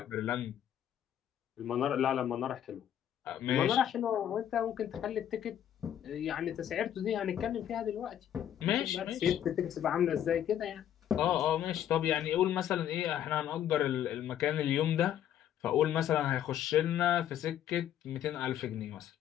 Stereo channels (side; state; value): right; quieter; 10.5 dB